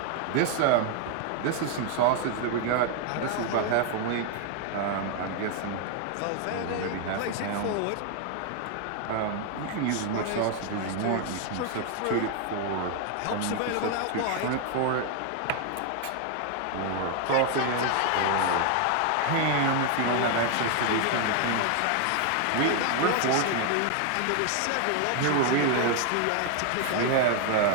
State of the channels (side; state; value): both; different; correlation 0.00